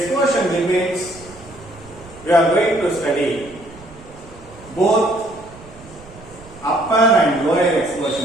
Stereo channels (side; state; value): right; noise; rumble, 21 dB below the sound